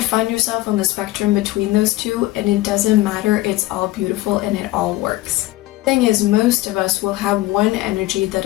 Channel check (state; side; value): quieter; right; 17.7 dB